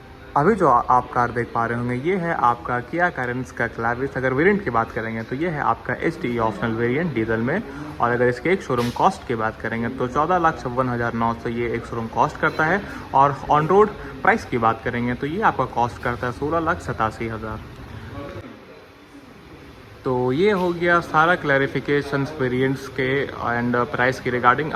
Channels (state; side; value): identical; both; correlation 1.00